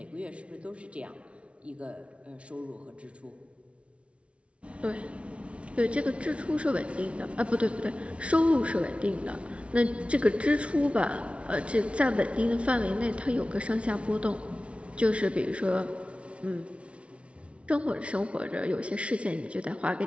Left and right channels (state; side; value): late; left; 0.061 ms